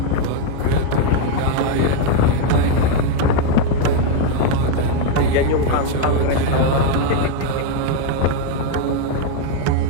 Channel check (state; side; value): different; both; correlation 0.01